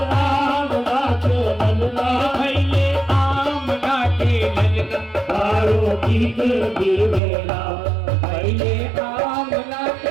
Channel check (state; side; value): drops out; left; at 7.2 s